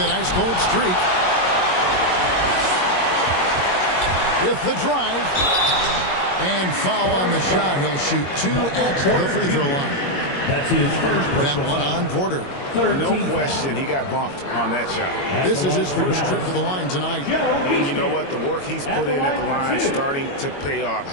ice-cold streak. With the drive. And foul on the shot. He'll shoot 2 at the free throw line. That's his first that one on Porter. No question he got bumped on that shot. This is his first trip to the line tonight. And you know what? The work he's put in at the line starting to pay off.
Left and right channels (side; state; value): right; late; 22 ms